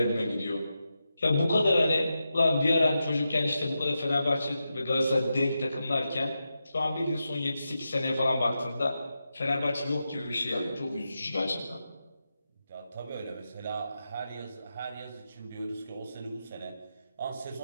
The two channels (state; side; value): inverted; both; correlation -0.89